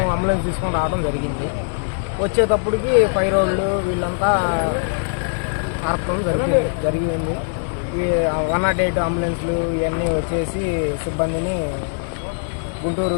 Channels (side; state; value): right; silent; digital silence